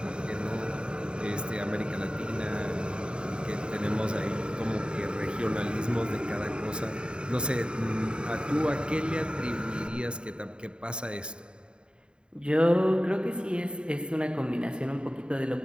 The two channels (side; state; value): left; late; 0.050 ms